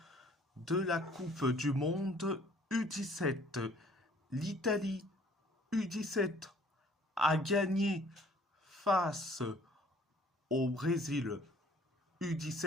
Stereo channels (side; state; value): both; normal; correlation 0.57